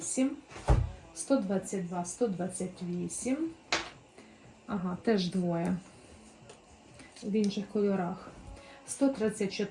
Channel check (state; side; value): identical; both; correlation 1.00